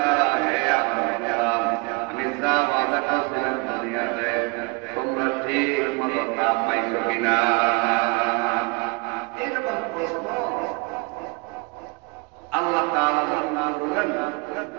হে না পাইছো কিনা? এইরকম প্রশ্ন আল্লাহ তাআলা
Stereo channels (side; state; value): left; quieter; 29.0 dB